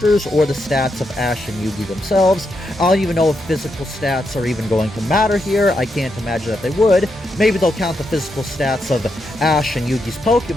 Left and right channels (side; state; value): both; normal; correlation 0.83